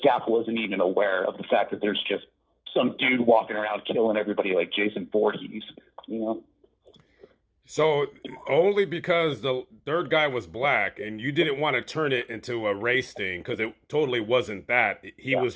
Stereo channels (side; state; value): both; identical; correlation 1.00